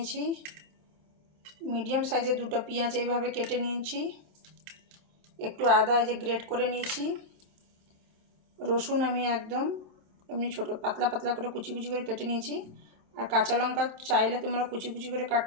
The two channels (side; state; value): left; late; 27 ms